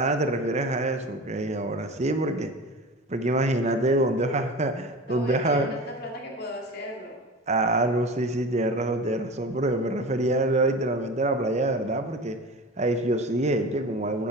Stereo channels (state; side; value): normal; both; correlation 0.33